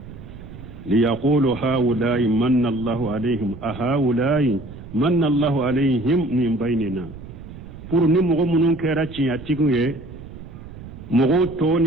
li yaqulu haula'i manna Allahu alayhim haula'i manna Allahu alayhim min baynina pour ni mo munun kera ci atiguye mo to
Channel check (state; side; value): noise; right; rumble, 14 dB below the sound